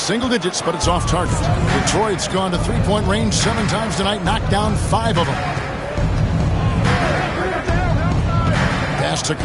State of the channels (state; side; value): identical; both; correlation 1.00